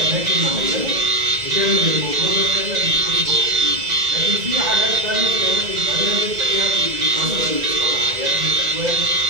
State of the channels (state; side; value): late; left; 2.0 ms